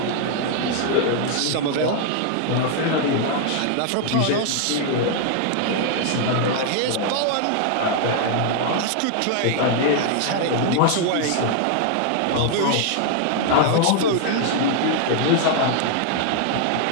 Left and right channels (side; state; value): both; different; correlation 0.00